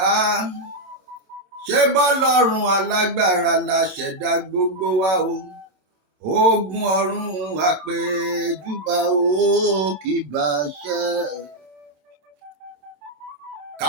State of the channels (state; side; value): late; left; 27 ms